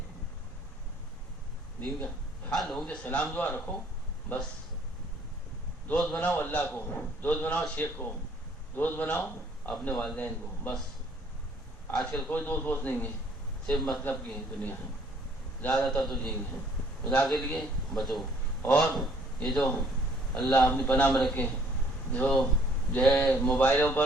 دین کا۔ ہاں لوگوں سے سلام دعا رکھو، بس دوست بناؤ اللہ کو، دوست بناؤ شیخ کو، دوست بناؤ اپنے والدین کو، بس۔ آج کل کوئی دوست نہیں ہے، صرف مطلب کی دنیا ہے، زیادہ تر تو یہی ہے۔ خدا کے لیے بچو، اور یہ جو اللہ اپنی پناہ میں رکھے جو ہے موبائلوں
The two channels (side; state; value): both; normal; correlation 0.61